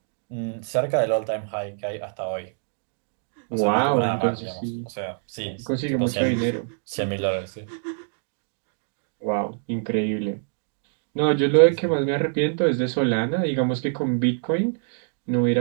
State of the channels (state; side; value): silent; left; digital silence